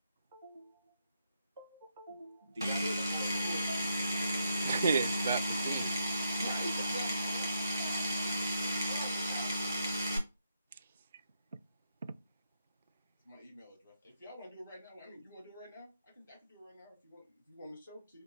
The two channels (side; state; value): both; inverted; correlation -0.78